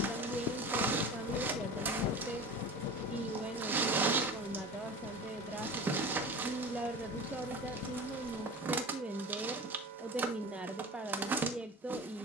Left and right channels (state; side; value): normal; both; correlation 0.34